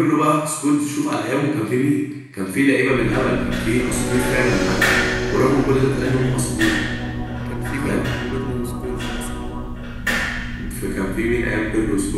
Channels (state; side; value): identical; both; correlation 1.00